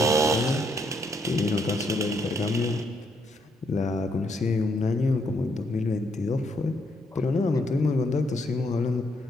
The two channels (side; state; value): both; normal; correlation 0.74